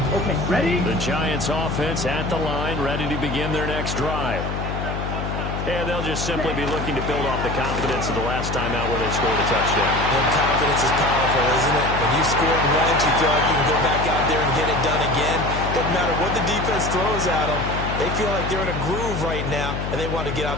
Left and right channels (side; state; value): left; noise; hum, 4 dB below the sound